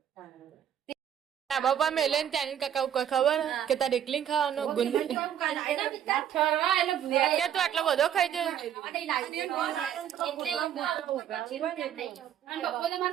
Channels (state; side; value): quieter; left; 9.8 dB